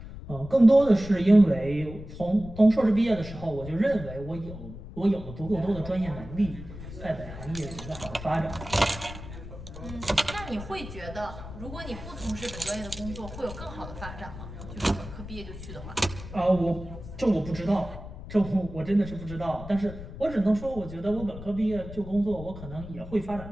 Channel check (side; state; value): left; noise; rumble, 12 dB below the sound